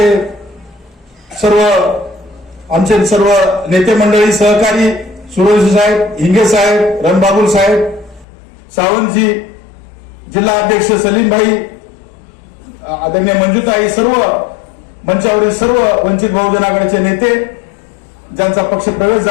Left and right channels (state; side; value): drops out; right; at 8.2 s